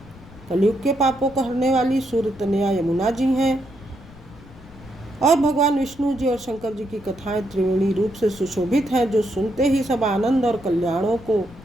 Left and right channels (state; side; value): noise; left; rumble, 20 dB below the sound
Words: कलयुग के पापों को हरने वाली सूर्य तनया यमुना जी हैं। और भगवान विष्णु जी और शंकर जी की कथाएं त्रिवेणी रूप से सुशोभित हैं, जो सुनते ही सब आनंद और कल्याणों को